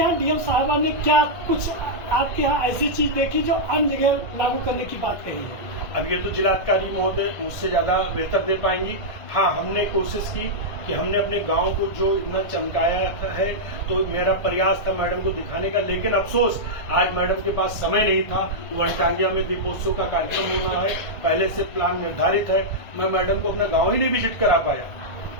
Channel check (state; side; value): late; right; 1.6 ms